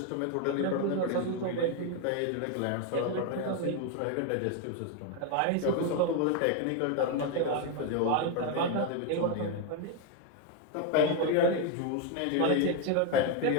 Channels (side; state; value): both; different; correlation 0.01